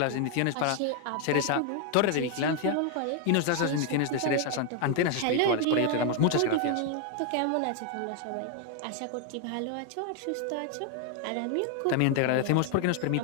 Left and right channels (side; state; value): both; different; correlation 0.00